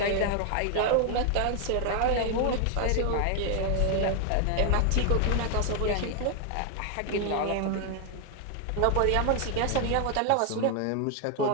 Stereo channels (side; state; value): both; different; correlation 0.00